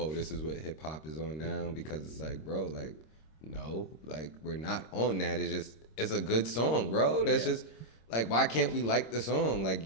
this is what hip-hop is on now, because it's like, bro, like, no. Like, we're not on that. It's a good song, bro. That's just, like, why can't we like the song? Like,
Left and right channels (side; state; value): right; late; 26 ms